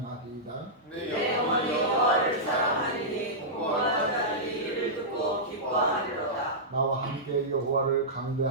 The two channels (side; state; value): both; normal; correlation -0.13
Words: 내 영혼이 여호와를 사랑하리니 공고한 자들이 이를 듣고 기뻐하리로다. 나와 함께 여호와를